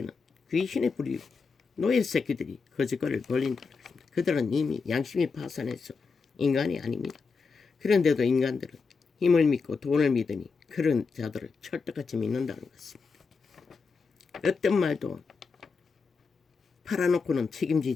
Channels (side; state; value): right; quieter; 4.8 dB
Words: 귀신의 부류 노예 새끼들이 거짓거리를 벌린다는 것입니다. 그들은 이미 양심이 파산해서 인간이 아닙니다. 그런데도 인간들은 힘을 믿고 돈을 믿으니 그런 자들을 철떡같이 믿는다는 것입니다. 어떤 말도 팔아놓고는